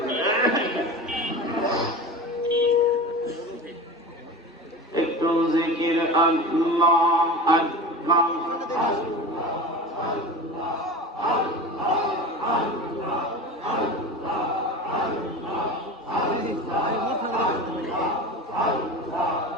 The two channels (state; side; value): normal; both; correlation 0.31